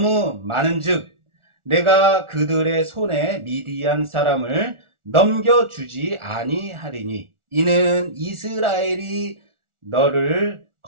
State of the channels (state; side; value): late; left; 1.4 ms